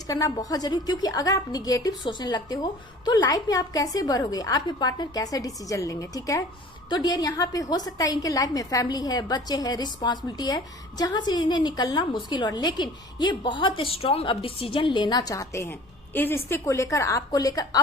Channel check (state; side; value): normal; both; correlation 0.46